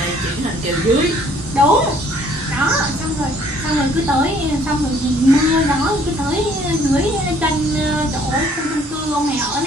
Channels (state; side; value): normal; both; correlation 0.60